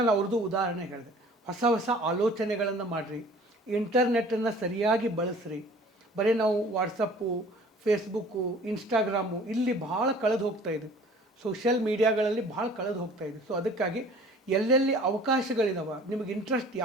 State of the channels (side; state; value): both; normal; correlation 0.49